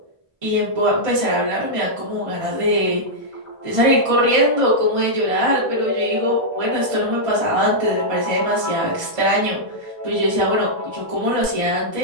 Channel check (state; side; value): late; left; 1.5 ms